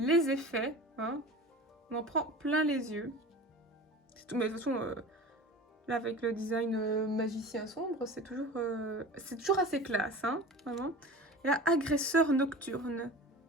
effets, hein. On en prend plein les yeux. C'est tout, mais de toute façon, là, avec le design magicien sombre, c'est toujours assez classe, hein, vraiment. Et là, agresseur nocturne.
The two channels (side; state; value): both; normal; correlation 0.36